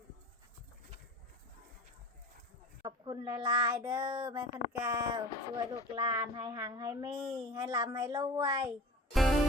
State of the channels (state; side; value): normal; both; correlation 0.38